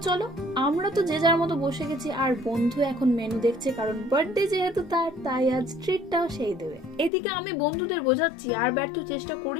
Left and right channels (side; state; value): right; drops out; at 7.1 s